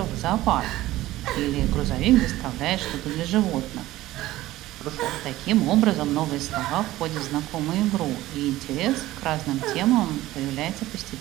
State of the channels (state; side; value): quieter; left; 16.3 dB